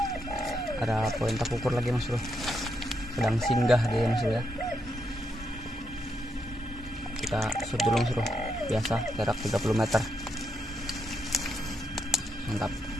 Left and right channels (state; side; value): normal; both; correlation 0.80